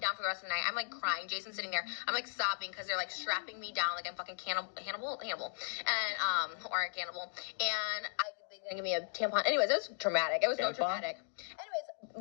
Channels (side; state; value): right; silent; digital silence